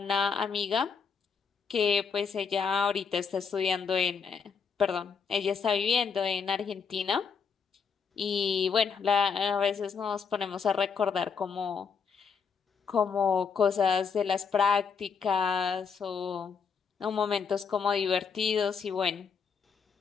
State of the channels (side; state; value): right; quieter; 6.0 dB